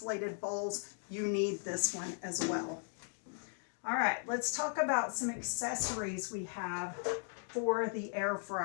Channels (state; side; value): silent; right; 53 dB below the other